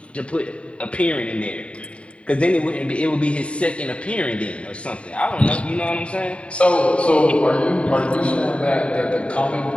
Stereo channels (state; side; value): late; right; 0.061 ms